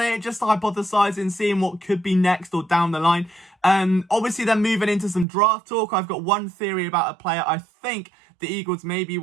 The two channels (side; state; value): left; drops out; at 5.2 s